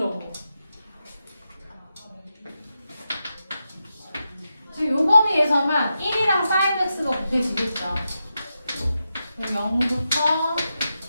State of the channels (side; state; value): both; inverted; correlation -0.88